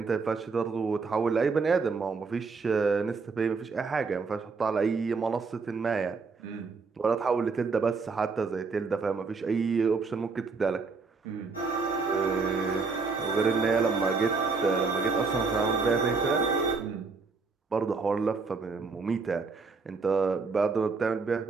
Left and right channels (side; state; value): left; quieter; 4.5 dB